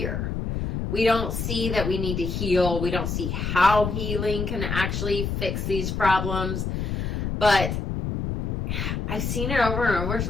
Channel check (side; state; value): left; noise; rumble, 2 dB below the sound